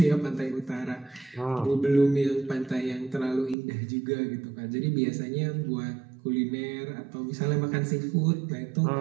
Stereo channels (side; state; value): left; drops out; at 3.6 s